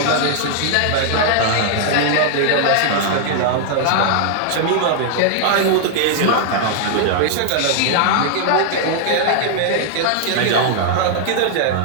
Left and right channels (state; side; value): different; both; correlation 0.00